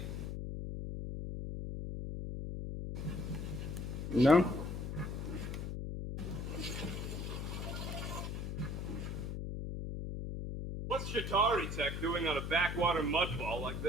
No? What's Chitauri Tech doing on a backwater mudball like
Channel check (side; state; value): left; noise; hum, 4 dB below the sound